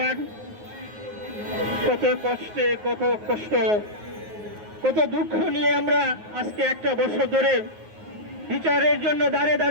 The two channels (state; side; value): late; left; 9.5 ms